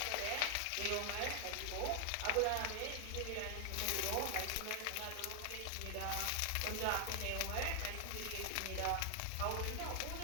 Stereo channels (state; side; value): different; both; correlation 0.00